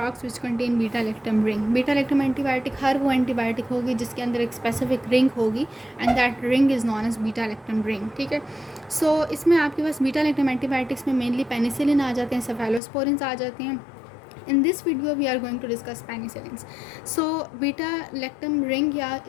which contain beta lactam ring. Beta lactam antibiotic हर वो एंटीबायोटिक होगी जिसके अंदर एक स्पेसिफिक रिंग होगी and that ring is known as beta lactam ring. ठीक है. सो इसमें आपके पास बीटा-लैक्टम एंटीबायोटिक्स में मेनली पेनिसिलिन आ जाते हैं, सेफेलोस्पोरिन्स आ जाते हैं. In this video we are going to discuss penicillins. So beta lactam ring या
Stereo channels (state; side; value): drops out; right; at 12.8 s